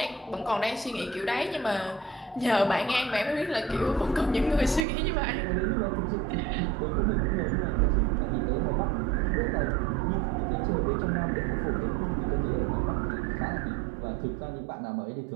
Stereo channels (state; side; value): drops out; left; at 4.9 s